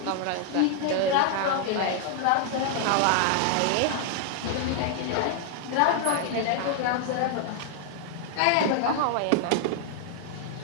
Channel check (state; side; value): different; both; correlation 0.00